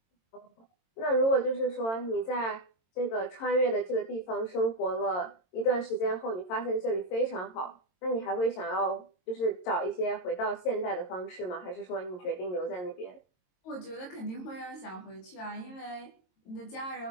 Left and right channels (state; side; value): late; right; 22 ms